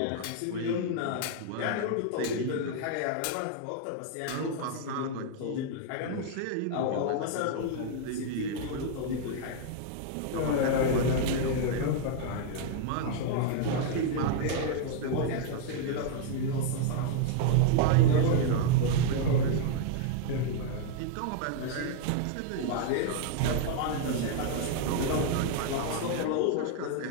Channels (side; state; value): both; different; correlation 0.00